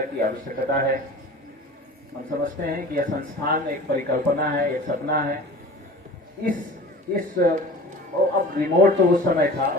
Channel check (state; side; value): normal; both; correlation 0.40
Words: आवश्यकता है। हम समझते हैं कि यह संस्थान एक परिकल्पना है, एक सपना है। अब रिमोट तो उस समय था,